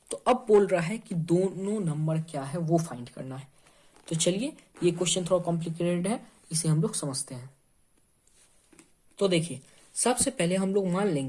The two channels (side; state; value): both; identical; correlation 1.00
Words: तो अब बोल रहा है कि दोनों नंबर क्या है वो फाइंड करना है। तो चलिए ये क्वेश्चन थोड़ा कॉम्प्लिकेटेड है, इसे हम लोग समझते हैं। तो देखिए सबसे पहले हम लोग मान